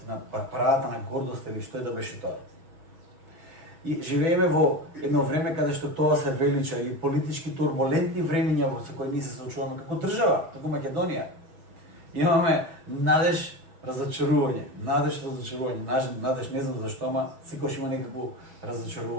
на парадата на гордост или што е да беше тоа. И живееме во едно време каде што тоа се велича и политички турбулентни времиња во кои ние се соочуваме како држава, како Македонија. Имаме надеж, разочарување, надеж, не знам зашто, ама секогаш има некако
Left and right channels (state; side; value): late; left; 6.4 ms